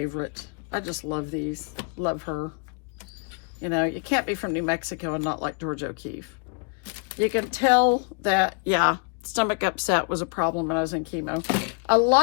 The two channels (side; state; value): right; quieter; 37.4 dB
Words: I just love these. Love her. You know, you can't be from New Mexico and not like George O'Keeffe. You can tell that, yeah, stomach upset was a problem when I was in chemo. A